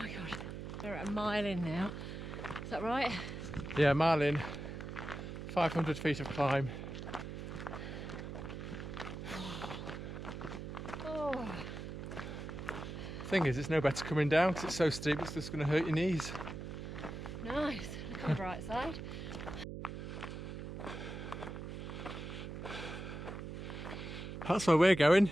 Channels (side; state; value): right; noise; hum, 7 dB below the sound